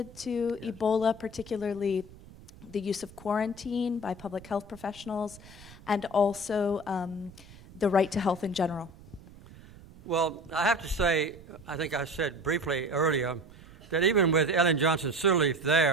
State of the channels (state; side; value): noise; right; rumble, 20 dB below the sound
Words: to Ebola, particularly the use of quarantine by public health professionals, and also the right to health in general. Well, I have to say, I think I said briefly earlier, that even with Ellen Johnson Sirleaf